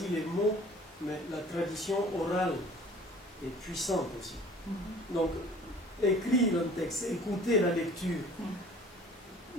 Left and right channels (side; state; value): both; normal; correlation 0.48